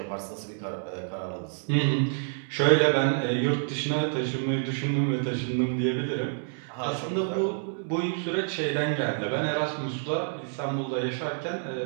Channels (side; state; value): left; silent; digital silence